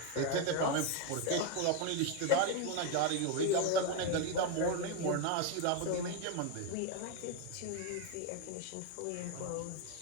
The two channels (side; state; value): both; different; correlation 0.02